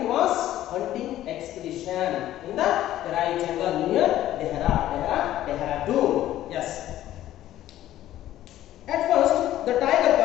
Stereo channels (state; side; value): quieter; right; 13.4 dB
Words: was hunting expedition in the Terai jungle near Dehradun. Yes. At first, the tiger